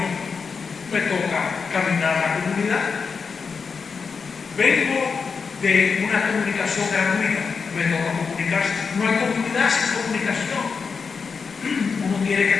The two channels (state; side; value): quieter; right; 5.4 dB